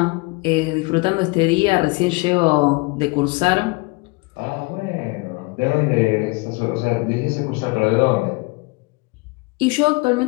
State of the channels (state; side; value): quieter; right; 26.3 dB